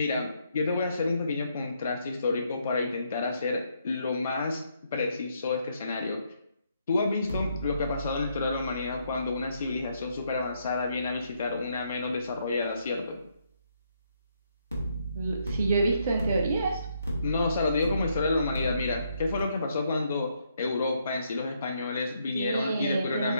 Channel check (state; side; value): inverted; both; correlation -0.74